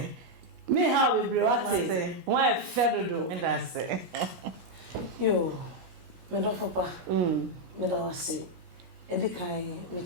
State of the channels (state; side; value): late; left; 17 ms